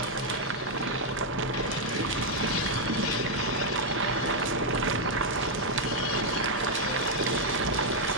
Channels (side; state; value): both; normal; correlation 0.00